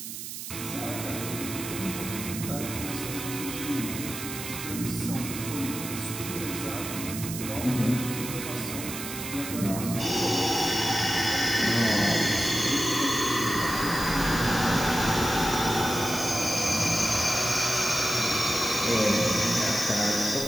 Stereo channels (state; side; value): noise; right; hiss, 8 dB below the sound